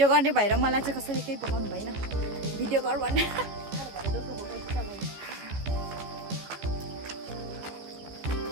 गर्ने भएर मलाई चाहिँ कसैले केही पकाउनु भएन भिडियो गर भन्ने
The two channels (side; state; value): left; late; 14 ms